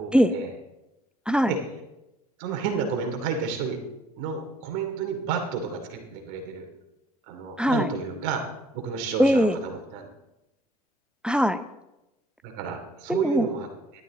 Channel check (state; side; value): normal; both; correlation 0.66